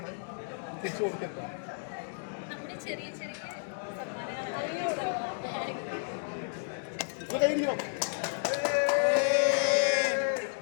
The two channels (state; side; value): silent; right; digital silence